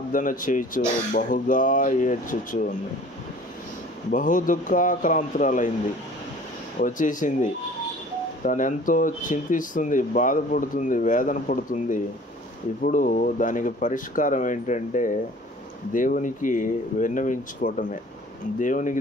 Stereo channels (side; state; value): both; normal; correlation 0.48